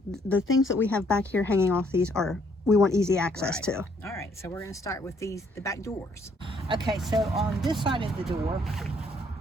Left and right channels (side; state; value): both; normal; correlation 0.66